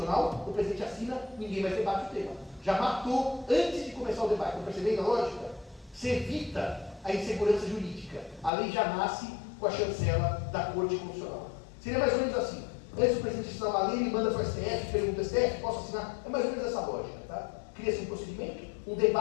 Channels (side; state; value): right; drops out; at 8.5 s